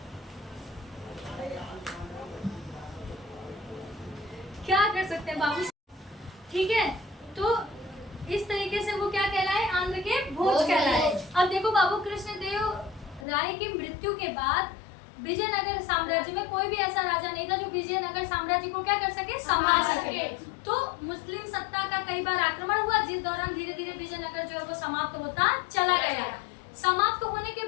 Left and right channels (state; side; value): drops out; right; at 13.2 s